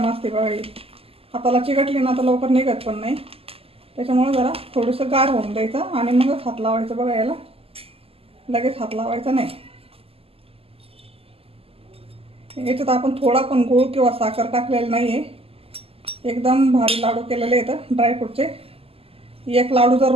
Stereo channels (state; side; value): late; left; 0.28 ms